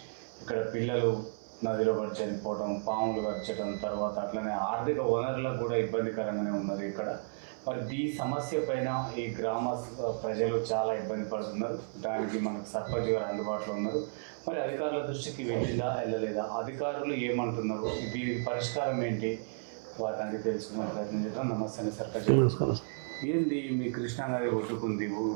ఇక్కడ పిల్లలు నదిలో పడి చనిపోవడం, పాములు గరచడం, తర్వాత అట్లనే ఆర్థిక వనరులకు కూడా ఇబ్బందికరంగానే ఉన్నది ఇక్కడ. మరి ఈ సమస్య పైన ఈ గ్రామ ప్రజలు చాలా ఇబ్బంది పడుతున్నారు. దానికి మనకు సర్పంచ్ గారు అందుబాటులో ఉన్నారు. మరి అధికారుల దృష్టికి వెళ్ళిందా వెళ్ళలేదా, అధికారులు ఏమంటున్నారు, దీనికి పరిష్కారం ఏంటి, వారిని అడిగి తెలుసుకునే ప్రయత్నం చేద్దాం. నమస్తే అండి సర్పంచ్ గారు. ఏంది మీ కృష్ణానది ఒడ్డుకుంది,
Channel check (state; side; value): silent; left; 56 dB below the other